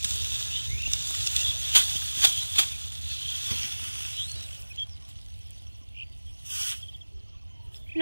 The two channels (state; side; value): inverted; both; correlation -1.00